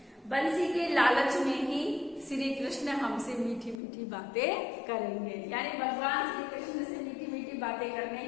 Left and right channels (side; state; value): right; drops out; at 3.8 s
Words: बंसी के लालच में ही श्री कृष्ण हमसे मीठी मीठी बातें करेंगे। यानी भगवान श्री कृष्ण से मीठी मीठी बातें करने